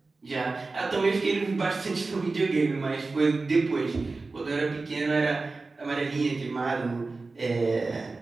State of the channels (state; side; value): quieter; left; 3.7 dB